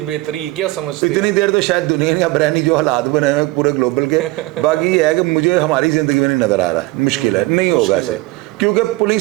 बेहतरी, क्या समझते हैं? इतनी देर तो शायद दुनिया ने अब रहनी जो हालात बने हुए पूरे ग्लोबल के, बाकी ये है कि मुझे हमारी ज़िंदगी में नहीं नज़र आ रहा, मुश्किल है, नहीं होगा ऐसे, क्योंकि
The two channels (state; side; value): quieter; left; 21.0 dB